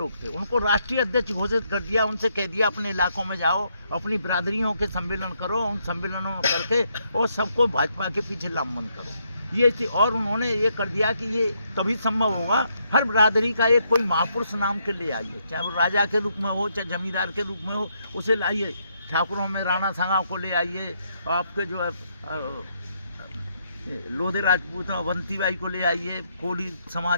थे, उनको राष्ट्रीय अध्यक्ष घोषित कर दिया। उनसे कह दिया अपने इलाकों में जाओ, अपनी बिरादरियों के सम्मेलन करो, उन सम्मेलनों में करके और सबको भाजपा के पीछे लामबंद करो। ये थी। और उन्होंने ये कर दिया कि ये तभी संभव होगा हर बिरादरी का एक कोई महापुरुष नाम के ले आइए, चाहे वो राजा के रूप में हो, चाहे जमींदार के रूप में हो, उसे लाइए। ठाकुरों में राणा सांगा को ले आइए, आपके जो है लोधे राजपूत अवंती बाई को ले आइए, कोली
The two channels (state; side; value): inverted; both; correlation -0.76